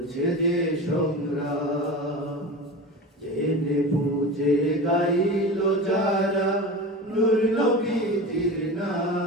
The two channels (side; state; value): both; normal; correlation 0.29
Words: যে সংগ্রাম। জেনে বুঝে গাইল যারা নূর নবীজির